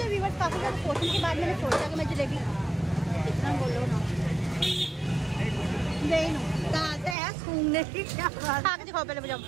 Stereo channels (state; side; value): drops out; left; at 7.2 s